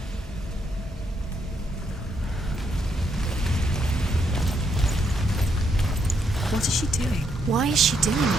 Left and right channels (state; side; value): normal; both; correlation 0.76